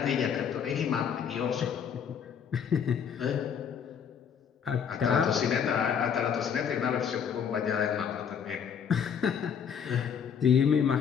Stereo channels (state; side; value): quieter; right; 7.6 dB